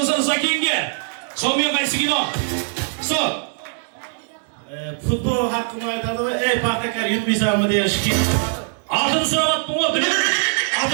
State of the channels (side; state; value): left; silent; digital silence